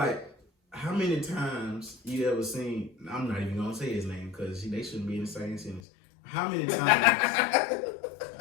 how many times you ever seen? I'm not even gonna say his name because they shouldn't be in the same sentence. How many times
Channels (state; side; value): drops out; right; at 5.8 s